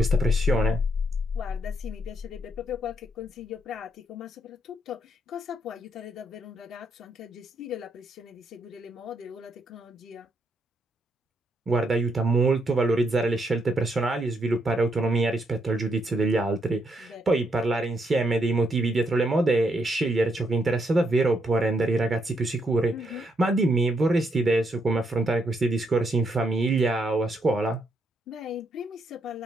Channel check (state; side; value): normal; both; correlation 0.76